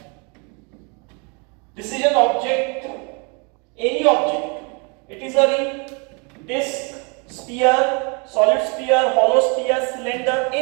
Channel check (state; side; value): quieter; left; 33.4 dB